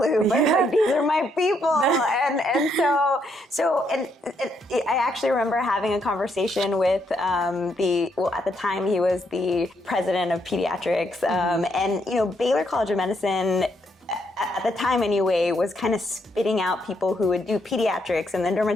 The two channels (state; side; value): normal; both; correlation 0.75